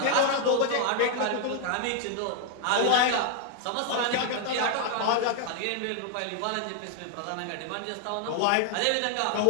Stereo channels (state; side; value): different; both; correlation 0.00